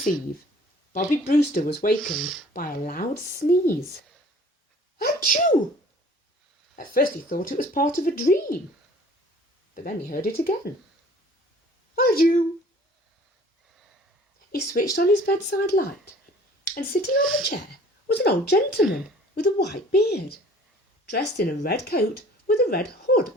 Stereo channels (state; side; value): normal; both; correlation 0.51